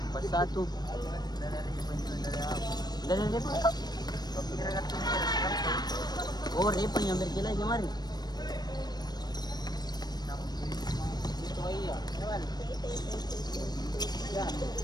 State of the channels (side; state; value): right; late; 0.19 ms